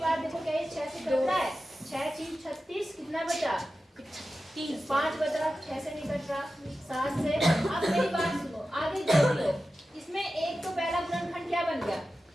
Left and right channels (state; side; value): normal; both; correlation 0.93